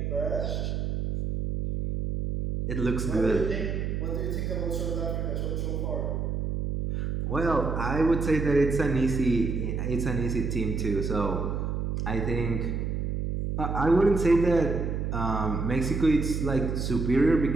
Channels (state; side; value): noise; right; hum, 1 dB below the sound